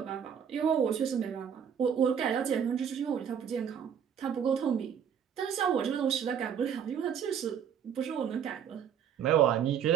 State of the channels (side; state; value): left; quieter; 8.2 dB